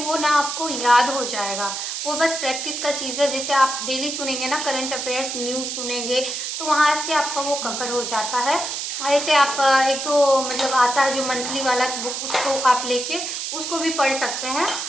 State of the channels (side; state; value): right; noise; hiss, 4 dB below the sound